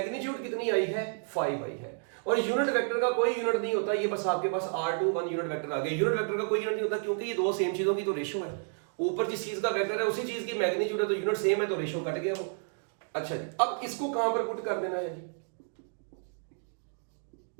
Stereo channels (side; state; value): left; silent; 57 dB below the other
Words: कितनी आई है 5 आई है। और यूनिट वेक्टर का कोई यूनिट नहीं होता, ये बस आपके पास R21 यूनिट वेक्टर आ गया। यूनिट वेक्टर का कोई यूनिट नहीं होता, क्योंकि ये दो सेम चीजों की तो रेशो है, ऊपर जिस चीज का वेक्टर है उसी चीज की मैग्नीट्यूड है, तो यूनिट सेम है तो रेशो कट गया वो। अच्छा जी, अब इसको कहां पर पुट कर देना है जी,